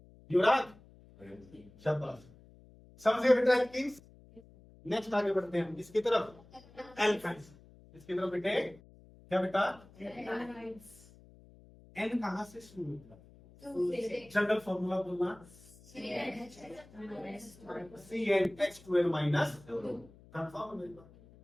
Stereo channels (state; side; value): noise; left; hum, 23 dB below the sound